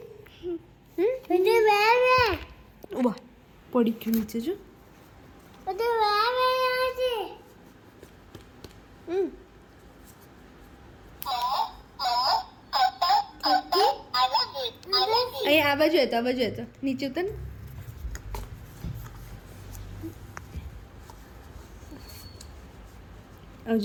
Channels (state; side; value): identical; both; correlation 1.00